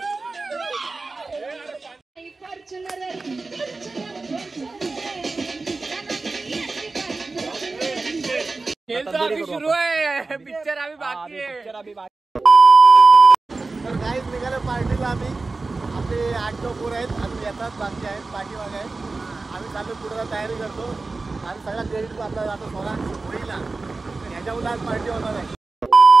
सुरू आहे पिक्चर अभी बाकी है. तर गाईज निघालो पार्टीला आम्ही. आपले 8-9 पोरं आहेत अजून येतात बाकी आहेत पाठीमागे आहेत. आम्ही चालू पुढे तयारी करतो आणि सगळा क्रेडिट आपला जातो सोळा होईला. ह्याच्यामुळे आज पार्टी होणार आहे.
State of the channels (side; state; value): left; quieter; 3.7 dB